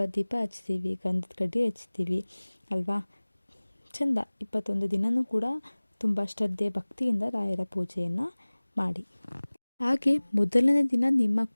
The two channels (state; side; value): inverted; both; correlation -1.00